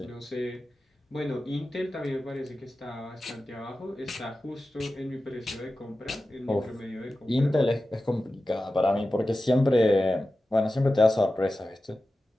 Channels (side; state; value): both; normal; correlation 0.94